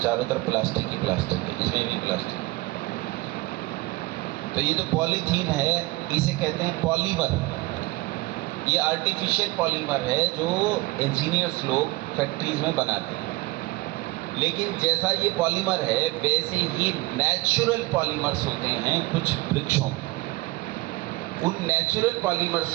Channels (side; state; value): left; quieter; 21.2 dB